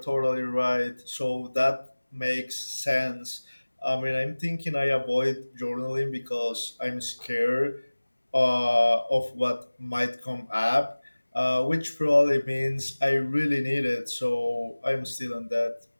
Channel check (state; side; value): inverted; both; correlation -1.00